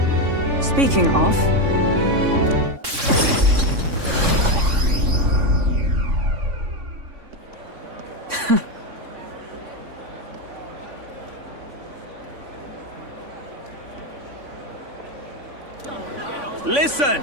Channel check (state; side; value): late; left; 3.5 ms